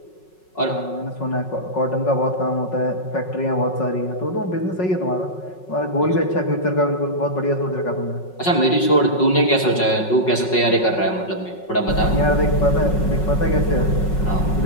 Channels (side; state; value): right; late; 5.4 ms